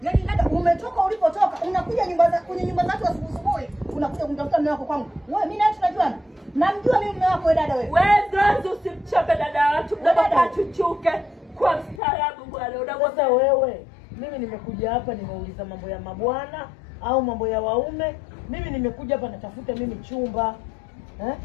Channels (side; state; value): right; drops out; at 12.0 s